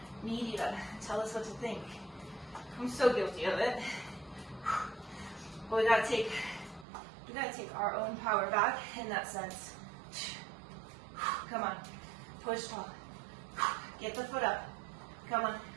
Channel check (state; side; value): drops out; left; at 6.9 s